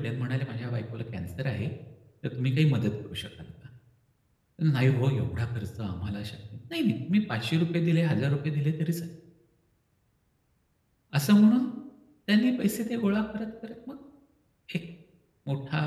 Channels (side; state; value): both; identical; correlation 1.00